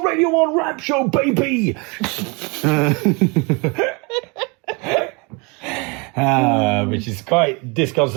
1 rap show, baby! Which is quite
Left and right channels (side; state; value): left; quieter; 30.0 dB